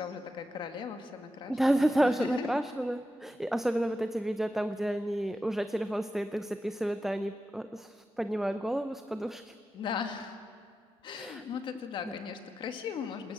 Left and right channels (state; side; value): normal; both; correlation 0.90